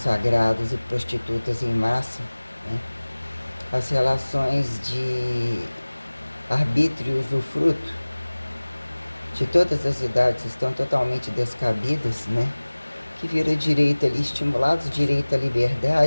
e prostitutas em massa, né? As relações de arbítrio e usufruto de todas as idades estão totalmente descabidas, né? Que vira direito ali, estimulados direito à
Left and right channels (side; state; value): both; inverted; correlation -1.00